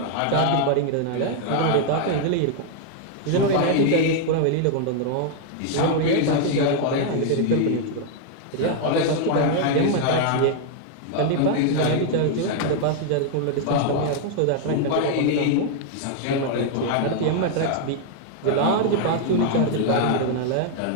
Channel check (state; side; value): different; both; correlation 0.00